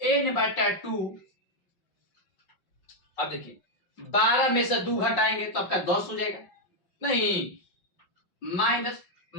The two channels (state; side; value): late; right; 5.5 ms